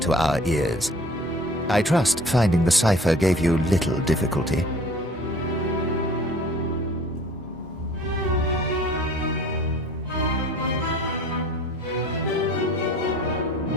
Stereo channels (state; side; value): normal; both; correlation 0.48